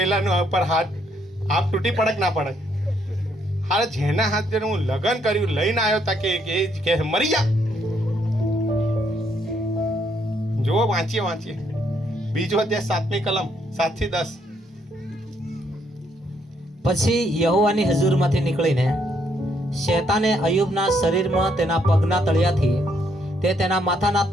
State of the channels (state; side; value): normal; both; correlation 0.72